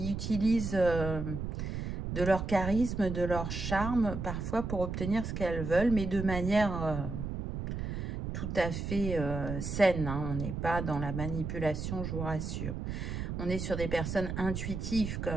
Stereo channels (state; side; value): noise; right; rumble, 4 dB below the sound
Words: utilisent de leur charisme, de leur charme, parfois pour obtenir ce qu'elles veulent, mais de manière tout à fait saine. Hein. On n'est pas dans la manipulation, je vous rassure. On est sur des personnes intuitives quand